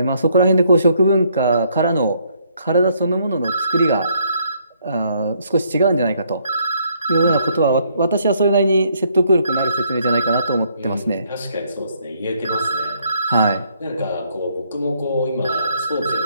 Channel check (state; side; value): inverted; both; correlation -0.69